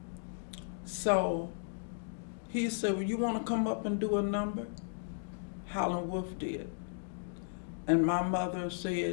so he said, "Well, you want to come up and do a number?" Howlin' Wolf did. And my mother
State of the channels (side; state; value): right; silent; digital silence